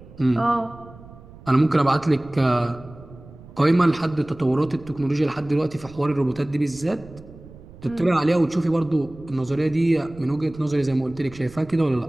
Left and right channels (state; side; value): noise; right; rumble, 20 dB below the sound